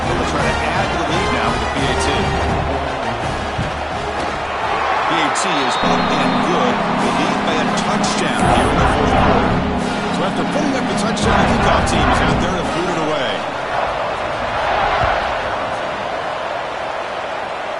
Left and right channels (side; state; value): both; identical; correlation 1.00